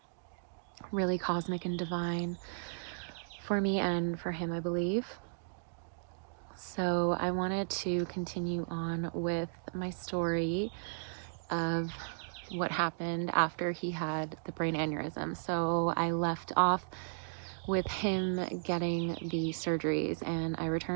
really cosmic and divine for me and for him, I believe. So I wanted to continue on with my story of what happened after he had the brain aneurysm. So I left off with him getting the surgeries, and I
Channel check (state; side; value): silent; left; digital silence